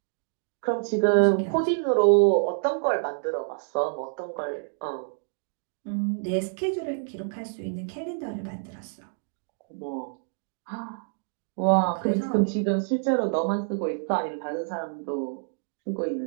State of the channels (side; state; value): left; silent; 60 dB below the other